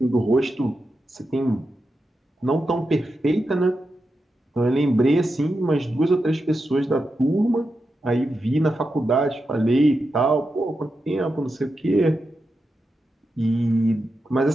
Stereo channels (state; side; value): normal; both; correlation 0.88